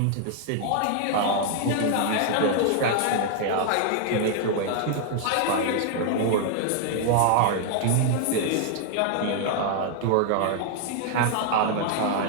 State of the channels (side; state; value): both; different; correlation 0.00